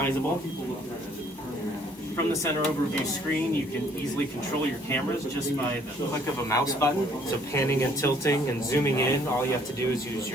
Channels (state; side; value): normal; both; correlation 0.61